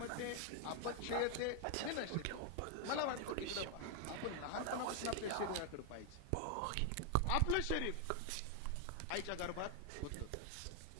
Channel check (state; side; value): different; both; correlation 0.00